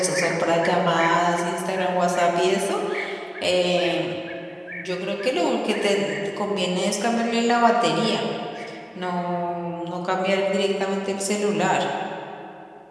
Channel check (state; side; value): identical; both; correlation 1.00